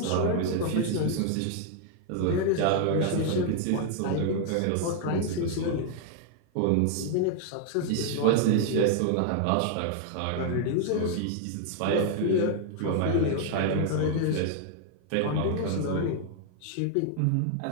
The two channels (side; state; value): both; different; correlation 0.00